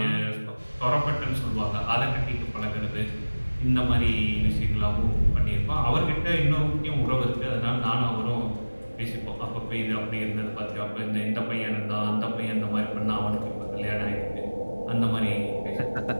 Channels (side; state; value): both; inverted; correlation -1.00